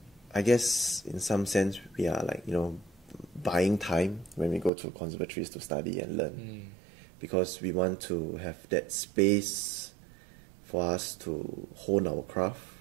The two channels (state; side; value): drops out; left; at 4.7 s